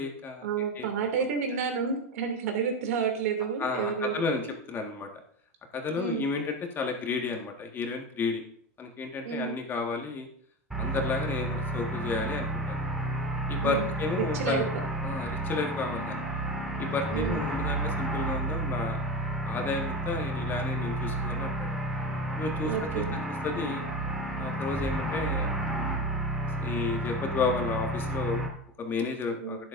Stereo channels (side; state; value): both; normal; correlation 0.24